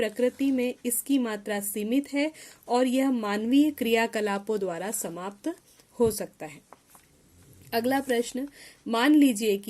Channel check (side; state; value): both; identical; correlation 1.00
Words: में इसकी मात्रा सीमित है और यह मानवीय क्रियाकलापों द्वारा समाप्त हो सकता है। अगला प्रश्न, मान लीजिए